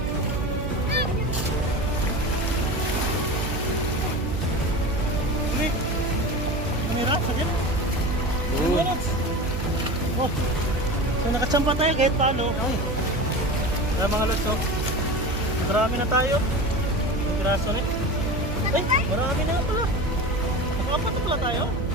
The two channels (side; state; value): right; noise; hum, 5 dB below the sound